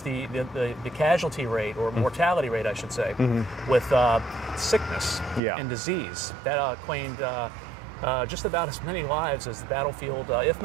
casualty rate, or mortality rate, I should say, with sickness and disease. That claimed just about as many lives as the battlefield, if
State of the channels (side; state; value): left; drops out; at 5.4 s